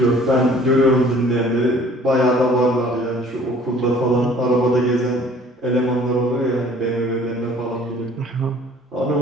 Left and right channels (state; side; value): normal; both; correlation 0.53